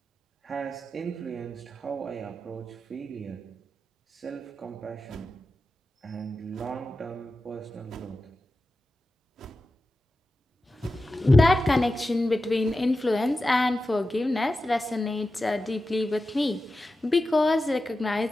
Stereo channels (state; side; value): normal; both; correlation 0.92